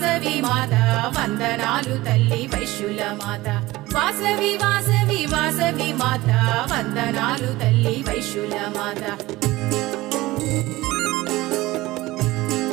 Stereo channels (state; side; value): quieter; left; 18.9 dB